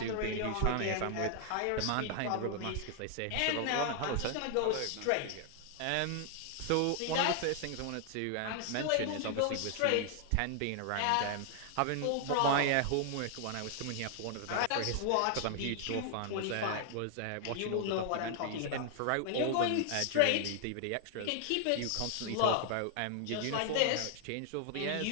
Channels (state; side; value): different; both; correlation 0.00